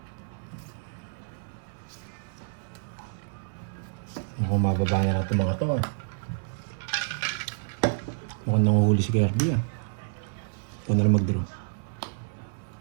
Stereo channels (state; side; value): silent; left; 59 dB below the other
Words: Mukhang mababa na natin mga to. Mukhang nanguhuli si Kirby ah. Ikaw na lang mag-draw.